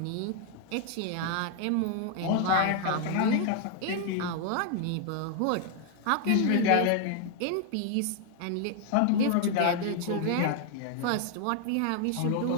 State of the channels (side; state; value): both; different; correlation 0.00